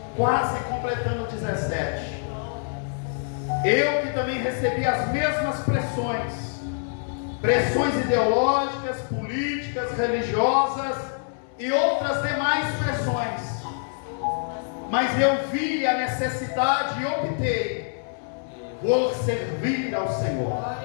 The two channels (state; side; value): silent; right; digital silence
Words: quase completando 17, eu que também recebi as mesmas pressões ideológicas, políticas, religiosas e outras demais pressões, mas eu vi a necessidade e optei por servir ao Senhor.